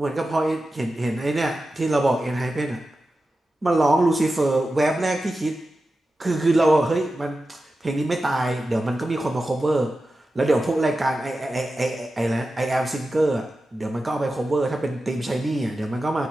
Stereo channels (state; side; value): normal; both; correlation 0.93